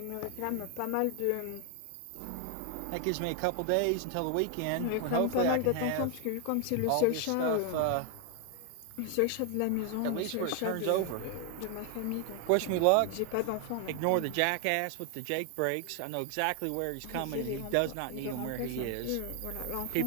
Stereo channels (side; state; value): both; different; correlation 0.00